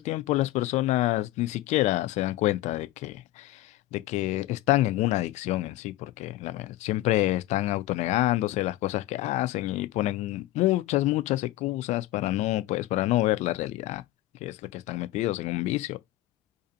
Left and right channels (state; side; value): quieter; right; 16.3 dB